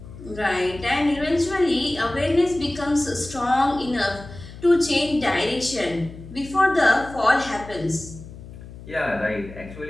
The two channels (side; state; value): left; noise; hum, 15 dB below the sound